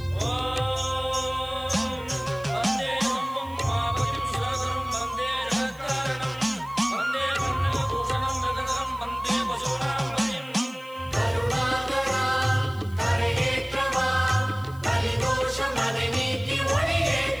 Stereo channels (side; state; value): left; noise; hiss, 24 dB below the sound